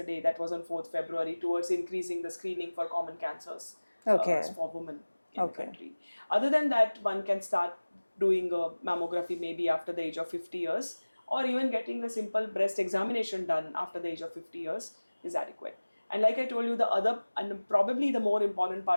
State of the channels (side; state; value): both; inverted; correlation -1.00